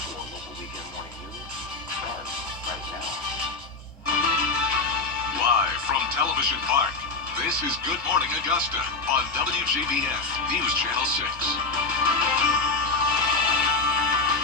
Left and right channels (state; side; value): quieter; right; 3.8 dB